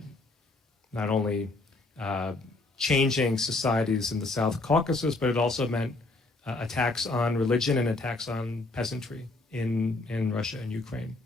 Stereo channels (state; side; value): quieter; right; 3.2 dB